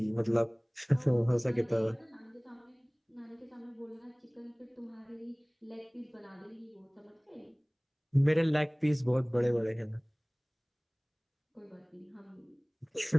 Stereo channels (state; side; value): identical; both; correlation 1.00